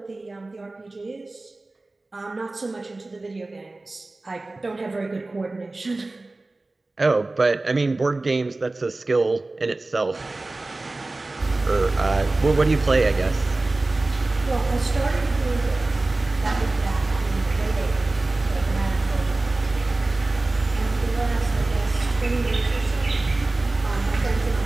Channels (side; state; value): left; quieter; 3.1 dB